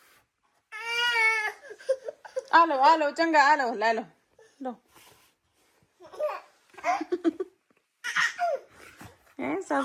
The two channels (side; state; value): both; identical; correlation 1.00